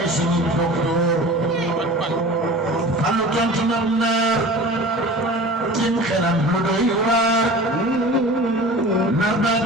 sunu docteur Fallu tontu na naar tim xelam lu doy waar nar na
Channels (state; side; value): normal; both; correlation 0.39